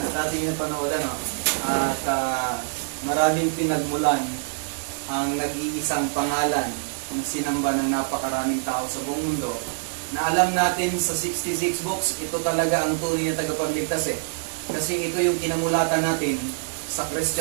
ating napanood, ano? At maraming pinagmulan ang nag-iisang pangalan ng sinamba ng napakaraming tao sa buong mundo na alam natin sa 66 books, ito talaga ang tunay na tagapagligtas eh. Kasi ito yung kinamulatan natin sa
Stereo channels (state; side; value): silent; left; 62 dB below the other